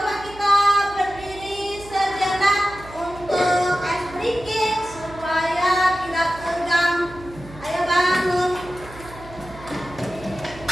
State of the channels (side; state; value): right; noise; hum, 18 dB below the sound